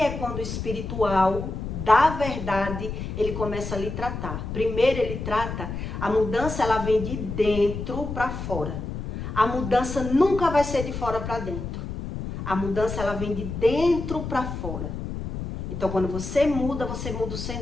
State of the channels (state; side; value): noise; left; rumble, 6 dB below the sound